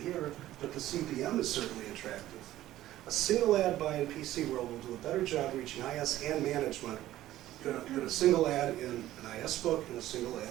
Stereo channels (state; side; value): quieter; left; 14.4 dB